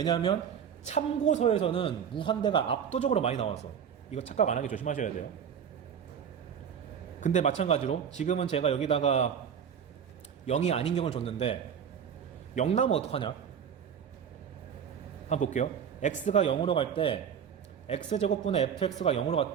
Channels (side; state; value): left; quieter; 7.9 dB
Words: 참고서에서는 무한대가 압도적으로 많이 나와서 이거 착각 안 하게 조심하셔야 돼요. 근데 마찬가지로 지금은 제가 여기다가 0이 아닌 경우를 줬는데 0 나오면 어떡하냐? 한번 볼게요. x가 0으로 갈 때 x제곱분의 fx가 0으로